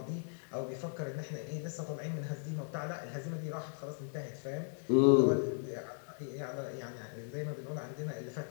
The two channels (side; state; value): right; silent; digital silence